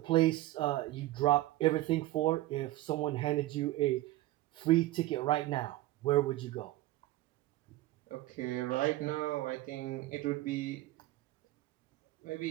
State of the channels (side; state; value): left; quieter; 16.7 dB